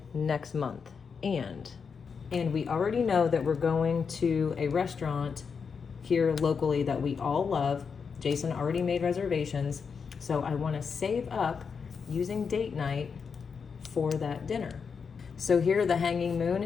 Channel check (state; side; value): quieter; right; 5.9 dB